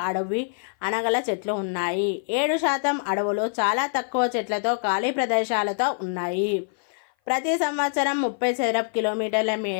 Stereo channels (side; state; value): right; silent; 57 dB below the other